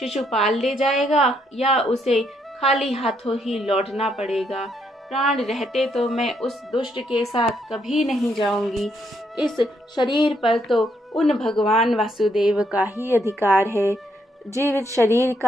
ले जाएगा या उसे खाली हाथों ही लौटना पड़ेगा। प्राण रहते तो मैं उस दुष्ट के साथ कभी नहीं जाऊंगी। इस शरीर पर तो उन भगवान वासुदेव का ही अधिकार है। जीवित शरीर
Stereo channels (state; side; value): normal; both; correlation 0.75